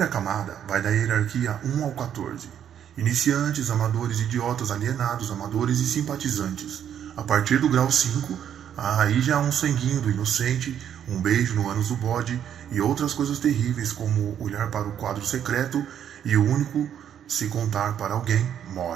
camada, vai da hierarquia 1 ao 14. Iniciantes, amadores, idiotas, alienados, amadores e simpatizantes. A partir do grau 5, aí já há um sanguinho do inocente, um beijo no ânus do bode e outras coisas terríveis como olhar para o quadro secreto e o único, se contar para alguém,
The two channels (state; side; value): quieter; left; 9.4 dB